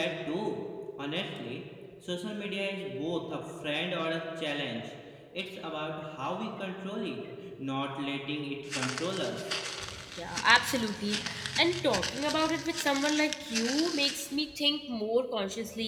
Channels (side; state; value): both; identical; correlation 1.00